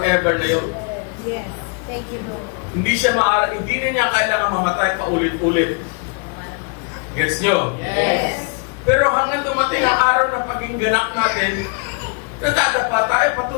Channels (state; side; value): quieter; right; 36.7 dB